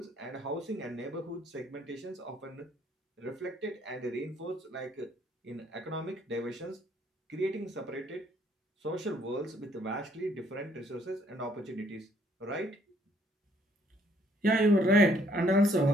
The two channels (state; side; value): normal; both; correlation 0.65